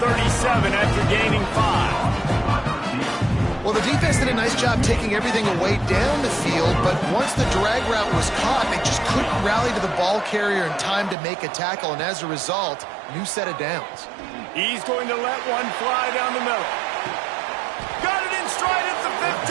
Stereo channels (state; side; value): drops out; left; at 11.2 s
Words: after gaining 5. Well, the defense did a nice job taking everything away down the field, but once the drag route was caught, they just couldn't rally to the ball carrier in time to make a tackle, and as a result, new set of downs. He's going to let one fly down the middle. Got it in stride at the